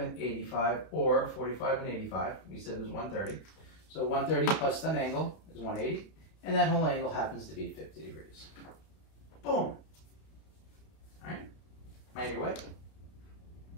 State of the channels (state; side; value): late; right; 31 ms